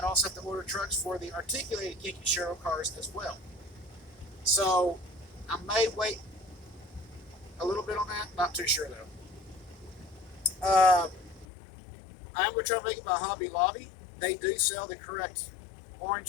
also have to order trucks for the articulated kinki sharyo cars as well. So I may wait a little bit on that. Not too sure though. I am going to try to make it my Hobby Lobby. They do sell the correct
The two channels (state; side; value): drops out; right; at 11.5 s